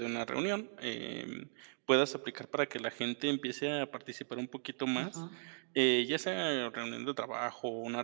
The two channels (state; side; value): silent; left; 53 dB below the other